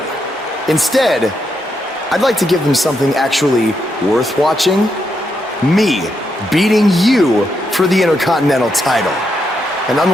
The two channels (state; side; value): normal; both; correlation 0.81